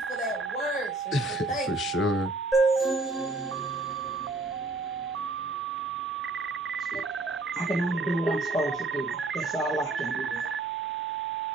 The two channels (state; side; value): quieter; left; 3.1 dB